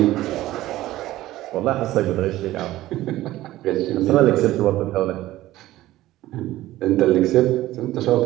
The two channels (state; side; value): quieter; left; 15.7 dB